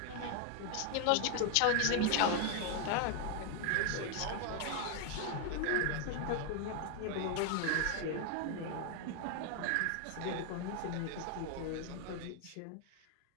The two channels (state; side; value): different; both; correlation 0.00